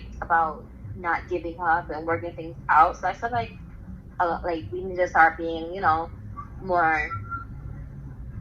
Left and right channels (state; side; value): identical; both; correlation 1.00